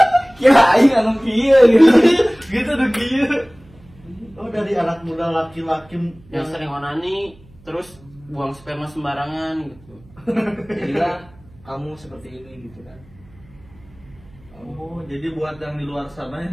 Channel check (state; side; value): noise; right; hum, 26 dB below the sound